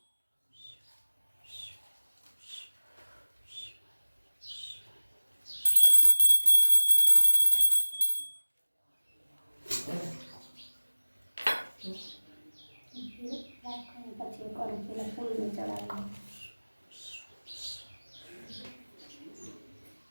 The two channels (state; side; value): inverted; both; correlation -1.00